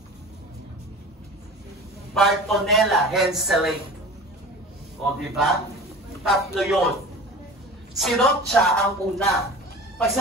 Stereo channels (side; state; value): both; normal; correlation 0.37